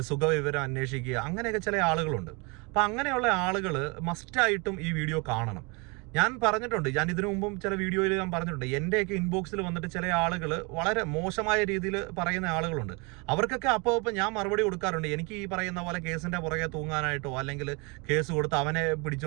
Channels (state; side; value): quieter; left; 29.6 dB